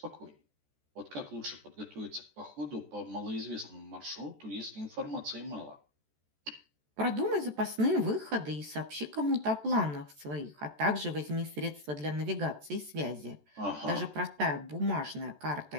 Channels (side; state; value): left; late; 14 ms